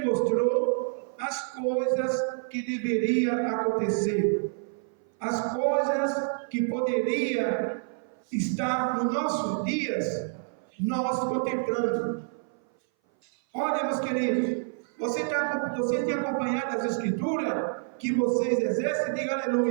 mostrou as coisas que deveriam acontecer, as coisas que poderiam estar nos nossos dias, nós contemplando. Olha, meus queridos, você tem acompanhado as Escrituras que vocês exercem? Diga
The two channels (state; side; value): silent; left; 57 dB below the other